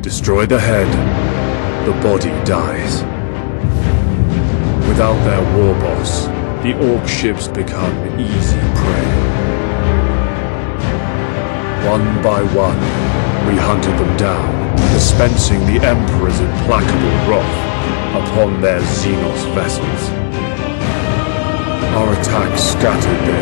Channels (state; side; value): silent; right; digital silence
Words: the head, the body dies. Without their war boss, the Orc ships become easy prey. One by one, we hunted them down, dispensing the Emperor's implacable wrath upon their Xenos vessels. Our attack scattered